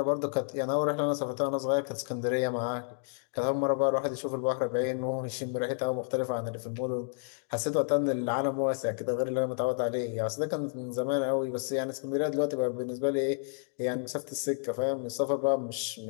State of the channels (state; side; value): silent; right; 57 dB below the other